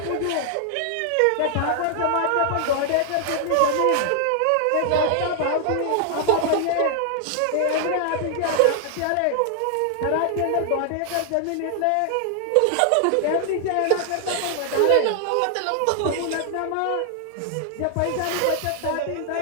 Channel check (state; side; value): different; both; correlation 0.00